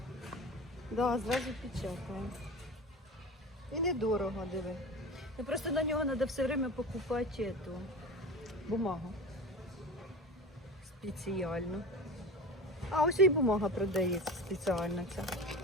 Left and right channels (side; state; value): both; normal; correlation 0.31